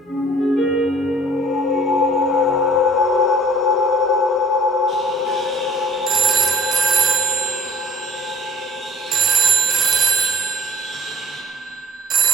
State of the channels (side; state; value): both; normal; correlation 0.52